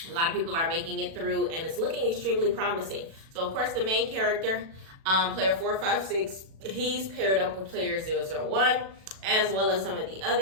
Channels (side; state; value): left; late; 37 ms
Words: A lot of people are making it through, and it's looking extremely promising. So, of course, the main character, player 456, he's paired up with player 001, as well as some of the